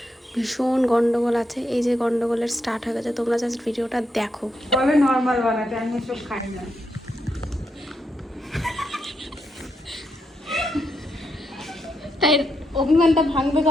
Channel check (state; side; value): normal; both; correlation 0.81